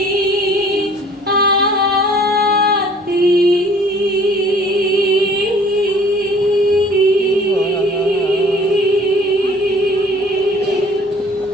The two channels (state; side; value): normal; both; correlation 0.53